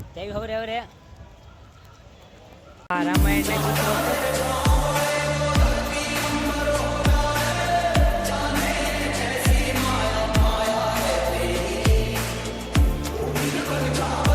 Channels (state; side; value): identical; both; correlation 1.00